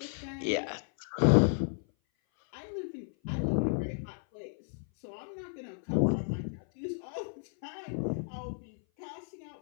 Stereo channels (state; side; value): silent; right; 56 dB below the other